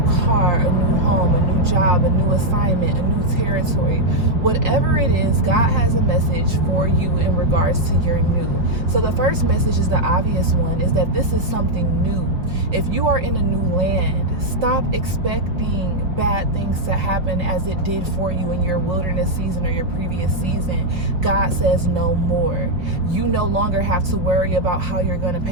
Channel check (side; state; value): left; late; 5.0 ms